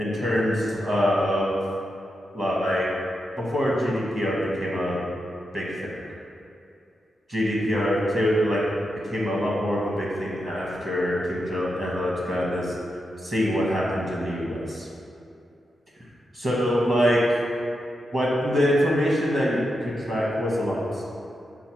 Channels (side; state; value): both; normal; correlation 0.86